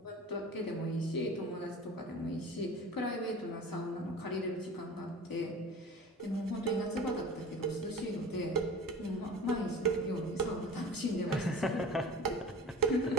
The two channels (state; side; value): normal; both; correlation 0.38